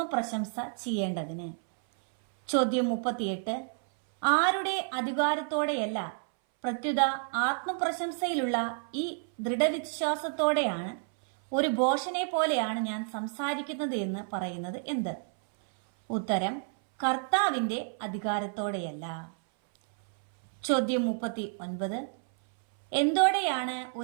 ചെയ്യേണ്ടതിന്. ചോദ്യം 38. ആരുടെ അധികാരത്തോടെയല്ല, പ്രത്യുത ആത്മപ്രശംസയിലുള്ള ഈ ദൃഢവിശ്വാസത്തോടെയാണ്, ഒരു ഭോഷനെ പോലെയാണ് ഞാൻ സംസാരിക്കുന്നത് എന്ന് പറയുന്നത് എന്ത്? ഉത്തരം: കർത്താവിൻ്റെ അധികാരത്തോടെയല്ല. ചോദ്യം 39. എന്തോടെയാണ്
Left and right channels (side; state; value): left; silent; 58 dB below the other